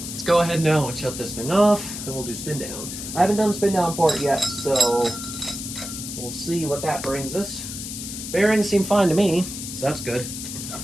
let's go ahead now and shut this thing off, and we'll do spin down. I haven't done spin down for it yet, so we'll see what that brings us. Bearings seem fine to me, so that's good.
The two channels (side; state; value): left; noise; hiss, 8 dB below the sound